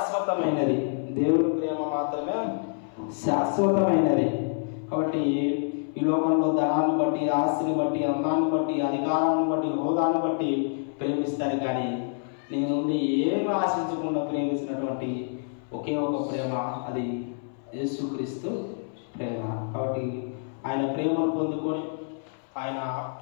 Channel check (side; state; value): right; silent; 60 dB below the other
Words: దేవుని ప్రేమ మాత్రమే శాశ్వతమైనది. కాబట్టి ఈ లోకంలో ధనాన్ని బట్టి, ఆస్తిని బట్టి, అందాన్ని బట్టి, అధికారాన్ని బట్టి, హోదాను బట్టి ప్రేమిస్తారు. కానీ నీ నుండి ఏమి ఆశించకుండా ప్రేమించినటువంటి ఒకే ఒక ప్రేమ, అది యేసుక్రీస్తు ప్రేమ. కాబట్టి ఆయన ప్రేమను పొందుకొని, ఆయన